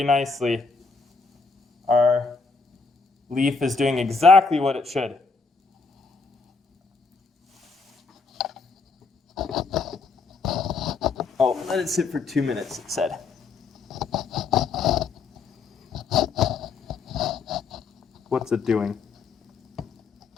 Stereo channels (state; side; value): quieter; right; 4.5 dB